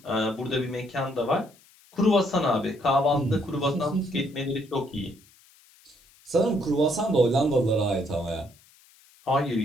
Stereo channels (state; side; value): noise; left; hiss, 28 dB below the sound